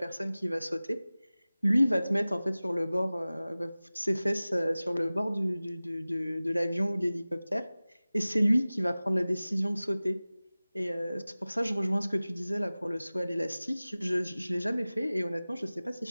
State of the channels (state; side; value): inverted; both; correlation -0.98